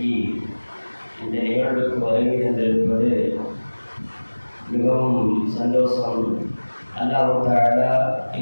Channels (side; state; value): both; inverted; correlation -1.00